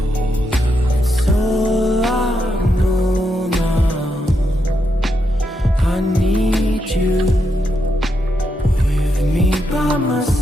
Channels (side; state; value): both; normal; correlation 0.82